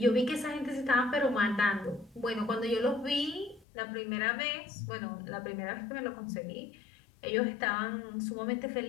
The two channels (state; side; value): drops out; right; at 3.7 s